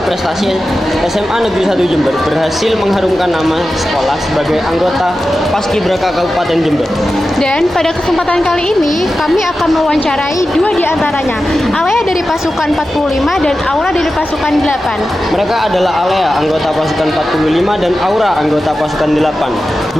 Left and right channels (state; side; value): normal; both; correlation 0.93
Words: SMA Negeri 1 Jember berhasil mengharumkan nama sekolah sebagai anggota Paskibraka Kabupaten Jember. Dan pada kesempatan kali ini, kami akan mewawancarai dua di antaranya, Alea dari pasukan 45 dan Aura dari pasukan 8. Mereka adalah Alea, anggota pasukan 45, dan Aura, anggota pasukan 8.